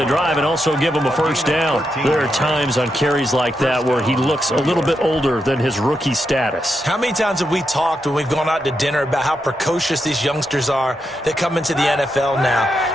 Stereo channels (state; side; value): normal; both; correlation 0.84